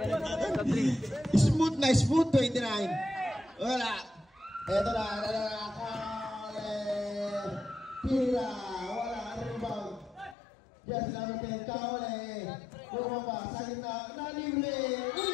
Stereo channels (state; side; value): drops out; right; at 10.4 s